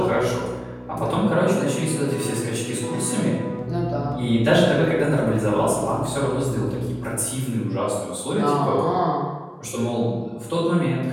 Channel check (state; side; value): identical; both; correlation 1.00